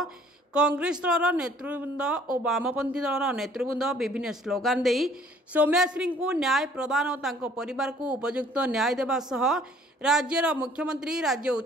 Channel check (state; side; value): normal; both; correlation 0.57